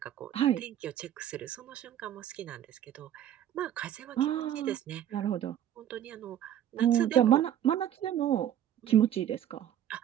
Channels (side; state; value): left; quieter; 10.9 dB